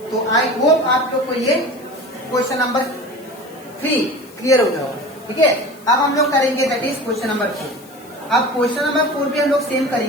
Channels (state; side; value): noise; left; hiss, 24 dB below the sound